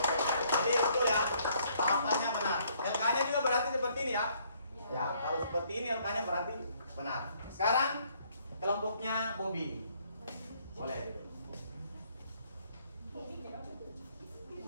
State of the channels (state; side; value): inverted; both; correlation -0.65